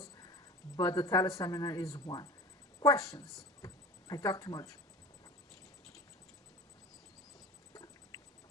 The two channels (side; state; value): both; normal; correlation 0.36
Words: but the teleseminar is one. Questions? I talk too much.